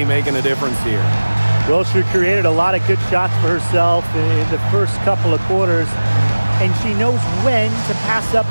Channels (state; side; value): inverted; both; correlation -1.00